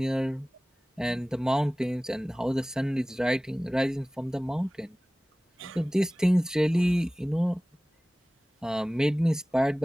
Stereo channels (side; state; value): both; normal; correlation 0.98